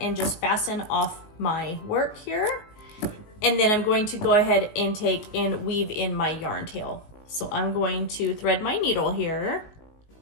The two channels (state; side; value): late; right; 19 ms